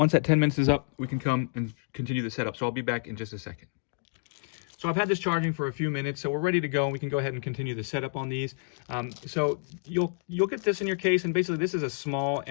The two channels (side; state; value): right; silent; digital silence